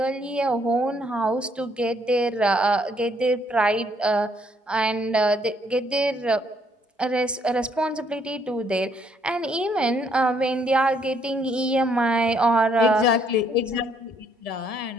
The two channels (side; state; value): both; normal; correlation 0.69